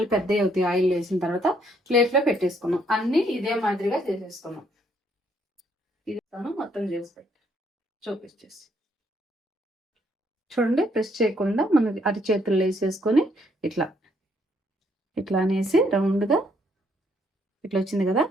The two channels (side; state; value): both; normal; correlation 0.70